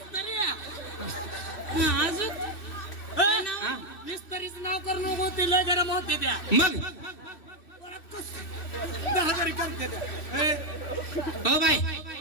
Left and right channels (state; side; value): late; right; 3.1 ms